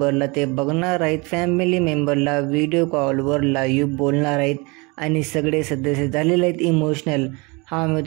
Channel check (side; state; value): left; quieter; 27.7 dB